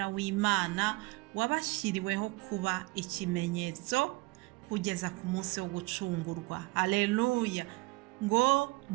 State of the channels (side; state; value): left; quieter; 22.8 dB